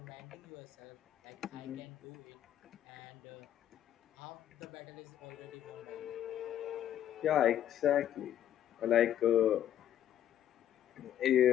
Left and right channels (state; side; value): quieter; right; 10.9 dB